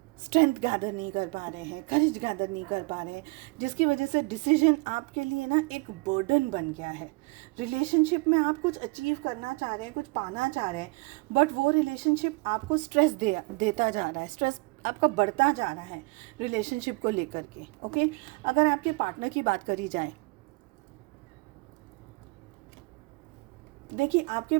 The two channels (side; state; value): left; quieter; 27.3 dB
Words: स्ट्रेंथ गैदर नहीं कर पा रहे हैं, करेज गैदर नहीं कर पा रहे हैं, जिसकी वजह से डिसीजन आपके लिए ना एक बर्डन बन गया है। रिलेशनशिप में आप कुछ अचीव करना चाह रहे हैं, कुछ पाना चाह रहे हैं, बट वो रिलेशनशिप आपको स्ट्रेस देता जा रहा है, स्ट्रेस आपका बढ़ता जा रहा है रिलेशनशिप को लेकर के। ओके, अगर आपके पार्टनर की बात करी जाए, देखिए आपके